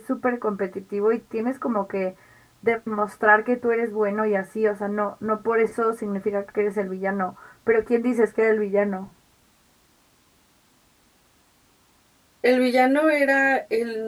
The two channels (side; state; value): both; identical; correlation 1.00